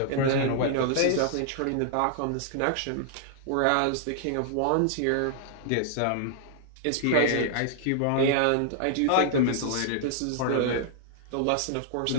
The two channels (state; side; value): different; both; correlation -0.01